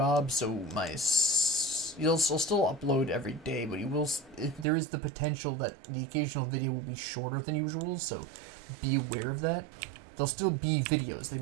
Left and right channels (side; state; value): left; drops out; at 4.7 s